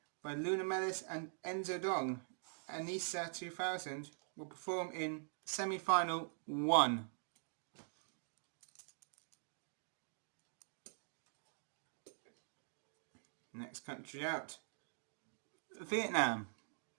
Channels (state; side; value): silent; left; digital silence